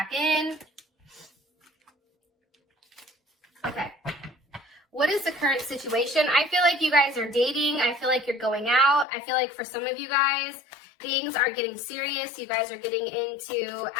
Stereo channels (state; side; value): drops out; right; at 9.1 s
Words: in. Okay. What is the current situation? I feel like you guys are dating. I feel like you're going out. I feel like for some of you guys, things are getting serious. You guys are getting into